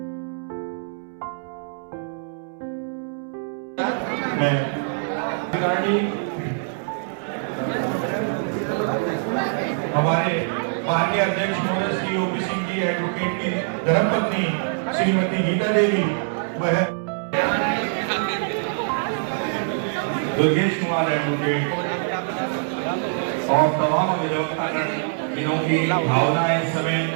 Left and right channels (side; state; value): left; silent; 63 dB below the other